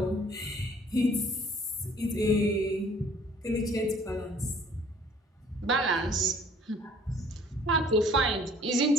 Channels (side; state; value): both; normal; correlation 0.56